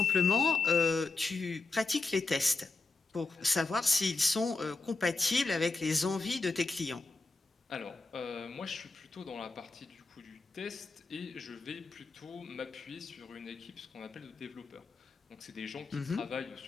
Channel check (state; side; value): quieter; right; 3.6 dB